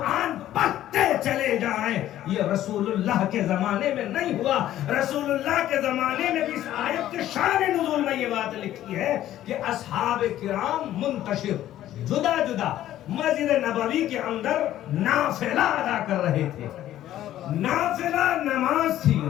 پڑھتے چلے جائیں، یہ رسول اللہ کے زمانے میں نہیں ہوا۔ رسول اللہ کے زمانے میں بھی اس آیت کے شان نزول میں یہ بات لکھی ہے کہ اصحاب کرام منتشر جدا مسجد نبوی کے اندر نافلہ ادا کر رہے تھے۔ نافلہ نماز تھی،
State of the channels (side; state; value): right; quieter; 12.9 dB